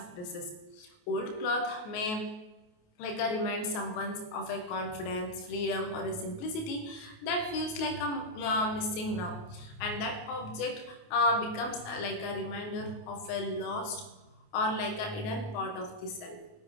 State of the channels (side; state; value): right; late; 28 ms